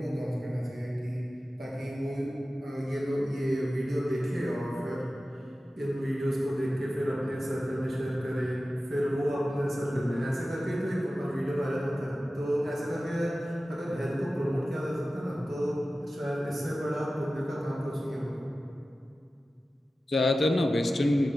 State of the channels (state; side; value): normal; both; correlation 0.95